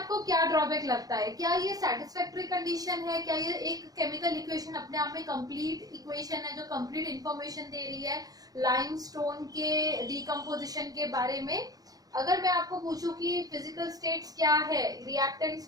क्या ड्रॉबैक लगता है? क्या ये सेटिस्फैक्टरी कंडीशन है? क्या ये एक केमिकल इक्वेशन अपने आप में कंप्लीट इक्वेशन है जो कंप्लीट इंफॉर्मेशन दे रही है लाइमस्टोन के डिकम्पोजिशन के बारे में? अगर मैं आपको पूछूं कि फिजिकल स्टेट्स क्या है रिएक्टेंट्स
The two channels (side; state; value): left; late; 0.18 ms